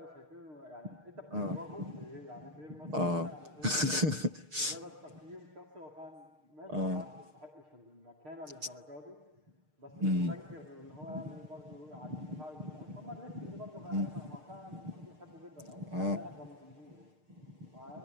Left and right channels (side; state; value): left; late; 6.6 ms